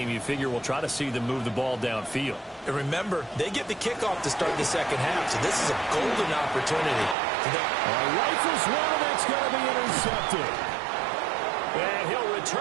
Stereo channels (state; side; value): drops out; left; at 7.2 s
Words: you figure we'll try to see them move the ball downfield. And remember, they get the kickoff to start the 2nd half, so this is a golden opportunity for them. Rifles one, that's going to be intercepted. And he'll